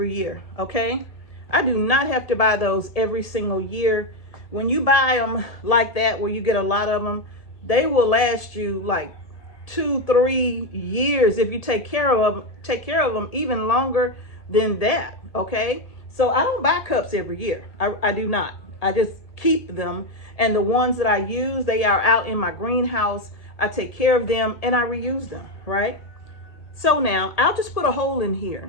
year, okay? I do not have to buy those every single year. When you buy them like that, where you get a lot of them, they will last you like 2-3 years if you take care of them even longer than that, okay? So I don't buy cups every year. I do not. I just keep them, and the ones that I use, they are out in my greenhouse. I take care of them and I reuse them, right? So now I'll just put a hole in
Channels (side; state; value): right; late; 1.7 ms